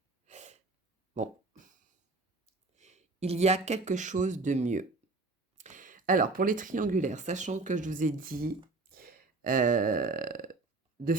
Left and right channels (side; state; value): left; quieter; 3.4 dB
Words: Bon, il y a quelque chose de mieux. Alors, pour les triangulaires, sachant que je vous ai dit de